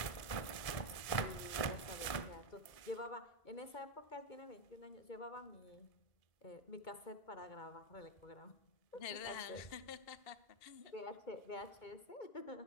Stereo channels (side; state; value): right; late; 1.7 ms